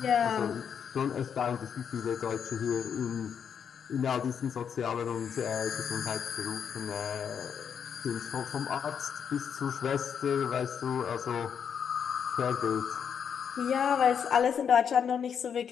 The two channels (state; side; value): quieter; right; 7.5 dB